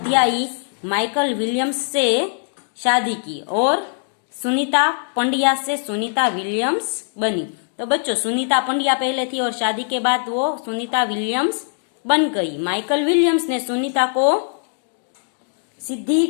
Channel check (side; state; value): right; silent; digital silence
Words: माइकल विलियम्स से शादी की और सुनीता पंड्या से सुनीता विलियम्स बनी। तो बच्चों, सुनीता पंड्या पहले थी और शादी के बाद वो सुनीता विलियम्स बन गई। माइकल विलियम्स ने सुनीता को